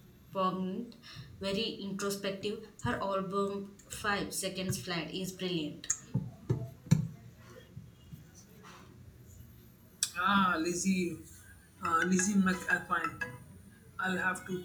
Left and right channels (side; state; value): both; identical; correlation 1.00